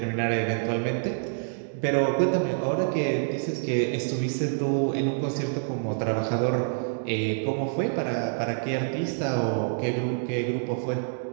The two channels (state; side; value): silent; left; digital silence